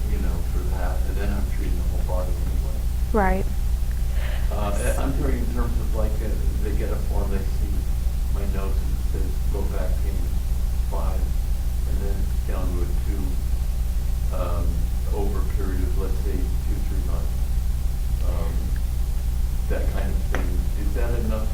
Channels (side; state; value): both; identical; correlation 1.00